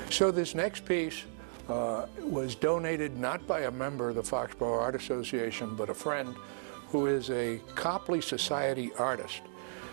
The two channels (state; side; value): silent; left; digital silence